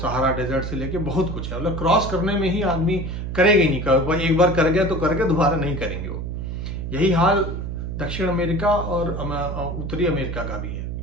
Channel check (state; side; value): noise; right; hum, 5 dB below the sound